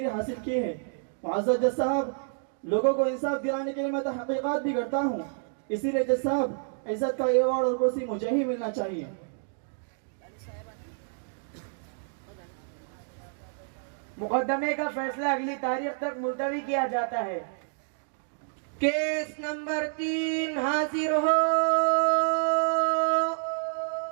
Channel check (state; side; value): silent; left; digital silence